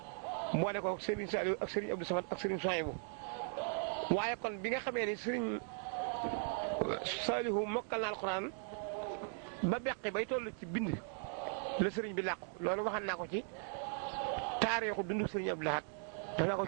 boole ko Serigne Saliou ak Serigne Abdou Samad ak Serigne Souhaïbou waaye kon bi nga xamee ni Serigne Saliou mokkal na alxuraan ba beqi bay toll ci bind la sëriñ bi làqu loolu waxan naa ko ci taarixu dundu Serigne Abdou Lahad def naa ko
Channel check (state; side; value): silent; left; 52 dB below the other